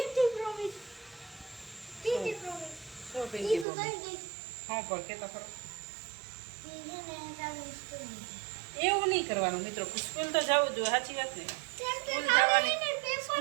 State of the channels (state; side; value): drops out; left; at 3.7 s